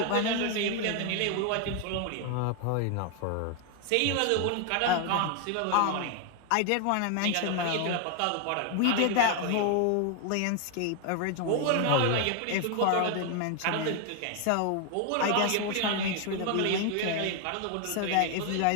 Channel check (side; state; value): both; different; correlation 0.00